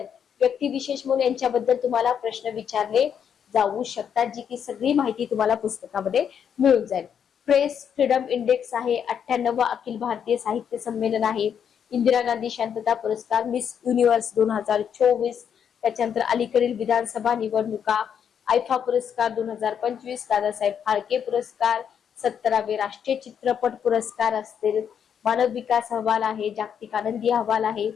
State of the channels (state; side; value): quieter; right; 8.1 dB